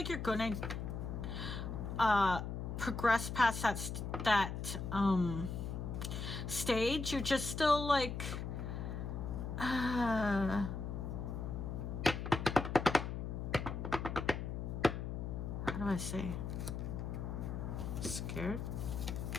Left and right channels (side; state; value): left; noise; hum, 4 dB below the sound